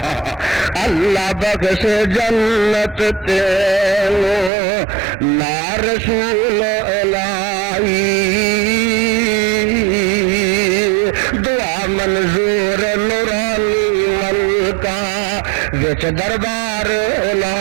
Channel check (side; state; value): left; drops out; at 4.5 s